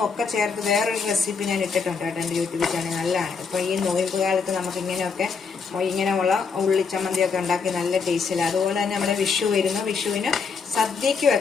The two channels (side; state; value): right; quieter; 5.3 dB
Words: ഒക്കെ ചേർത്ത് വേറൊരു റെസിപ്പി ഞാൻ ഇട്ടിട്ടുണ്ട് കേട്ടോ എൻ്റെ യൂട്യൂബ് ചാനൽ. നല്ലതാണ്. ഇപ്പോൾ ഈ നോയമ്പ് കാലത്ത് നമുക്ക് ഇങ്ങനെയുള്ള ഉള്ളിച്ചമ്മന്തിയൊക്കെ ഉണ്ടാക്കി നല്ല ടേസ്റ്റില്ല. അതുപോലെ തന്നെ നമ്മുടെ വിഷു വരുന്നു. വിഷുവിന് സദ്യക്ക്